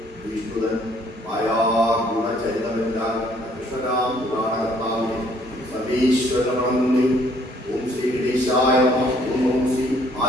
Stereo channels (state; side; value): normal; both; correlation 0.63